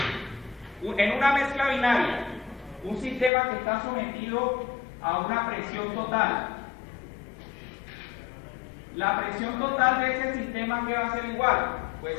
En una mezcla binaria, un sistema que está sometido a una presión total. La presión total de ese sistema, ¿qué va a ser igual?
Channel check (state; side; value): drops out; right; at 3.3 s